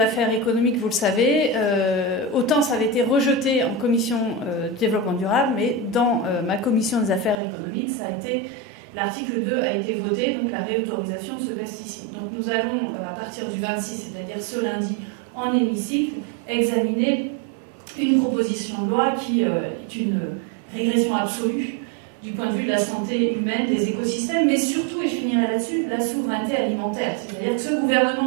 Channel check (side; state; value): left; drops out; at 7.4 s